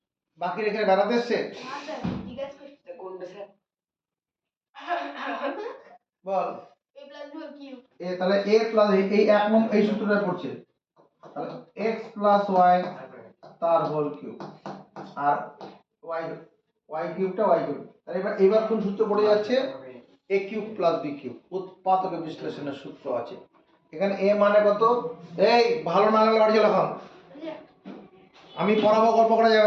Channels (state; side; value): identical; both; correlation 1.00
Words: বাকি রেখে বেড়াতে এসছে হ্যাঁ স্যার, জিজ্ঞাসা করছি। কোনটা sir? Ball a plus b whole cube। এ তাহলে a প্লাস এই এক নম্বর এই সূত্রটা পড়ছে তাহলে x প্লাস y তার হোল কিউব আর y কিউবটা y কিউব তাহলে এবার কোন সূত্র পড়ে যাচ্ছে a cube plus b cube উৎপাদক বিশ্লেষণের সূত্র আছে এখানে a মানে কত এই ভালো না লাগলে বাড়ি চলে এখন আচ্ছা, আমি পড়াবো গল্প করা